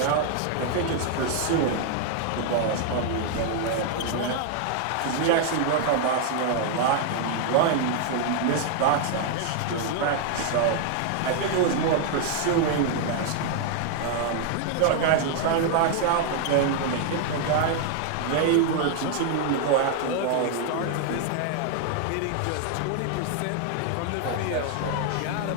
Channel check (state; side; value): different; both; correlation 0.00